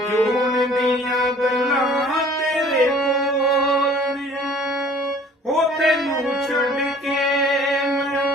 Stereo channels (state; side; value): normal; both; correlation 0.51